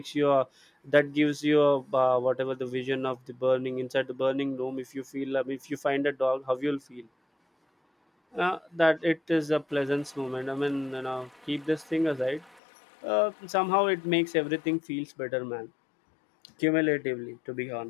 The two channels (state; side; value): drops out; right; at 12.6 s